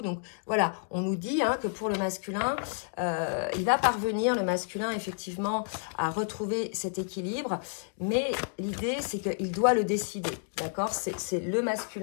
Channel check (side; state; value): right; silent; digital silence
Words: voilà, on nous dit que pour le masculin, il va parvenir, le masculin, effectivement, à retrouver cet équilibre. Mais l'idée, c'est qu'il doit le décider, d'accord? C'est le